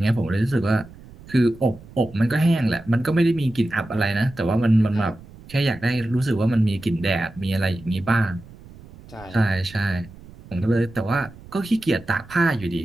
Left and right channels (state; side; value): noise; right; rumble, 20 dB below the sound